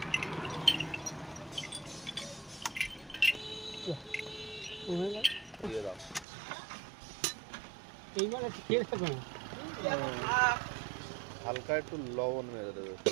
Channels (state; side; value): drops out; left; at 6.2 s